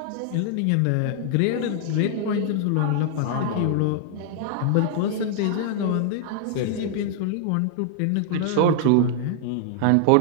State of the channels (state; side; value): different; both; correlation 0.00